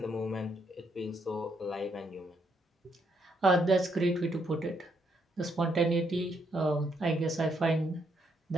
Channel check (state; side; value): normal; both; correlation 0.74